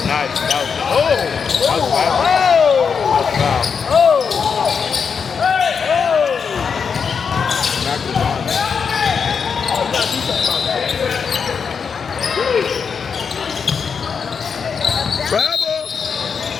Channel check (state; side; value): quieter; right; 6.1 dB